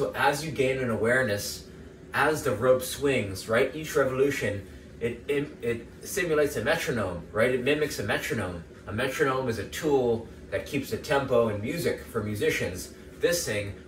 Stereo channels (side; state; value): both; identical; correlation 1.00